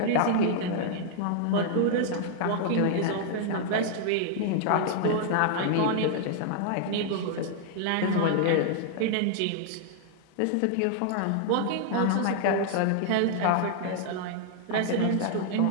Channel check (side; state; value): both; different; correlation -0.01